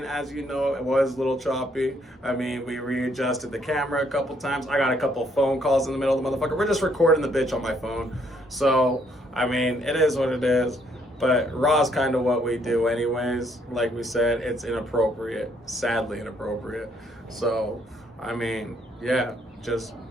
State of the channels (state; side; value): normal; both; correlation 0.69